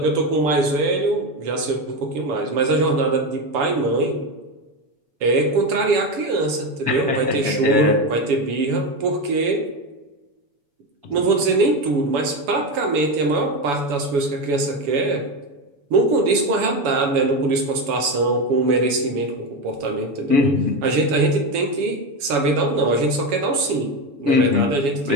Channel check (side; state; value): left; late; 7.1 ms